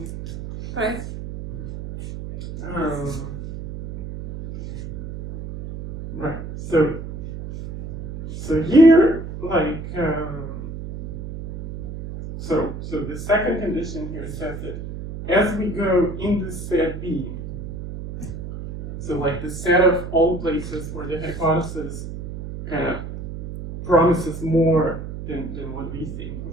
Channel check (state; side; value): noise; right; hum, 9 dB below the sound